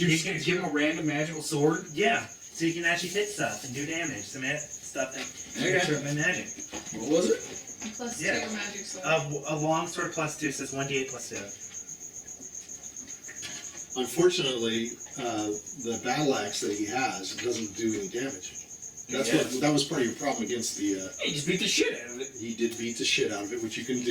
just gonna give him a random magical sword? Yeah, so you can actually hit stuff and do damage. Some stuff that Okay. can my magic. What was it? Plus Yeah. 2 magic sword. A longsword +2 says 1d8 +2. Unfortunately, the battle axe that he has doesn't do any damage. That was part of your problem against the. He just beat the shit out of it. He did beat the shit out of it, which you can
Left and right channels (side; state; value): both; identical; correlation 1.00